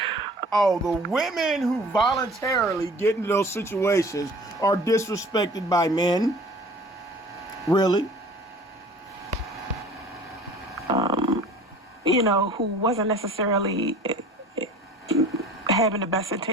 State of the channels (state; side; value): normal; both; correlation 0.46